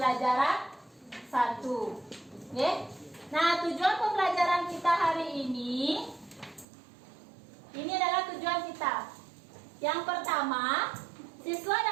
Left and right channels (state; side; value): drops out; left; at 6.7 s